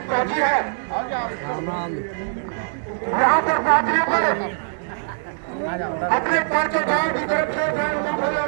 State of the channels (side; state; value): left; silent; digital silence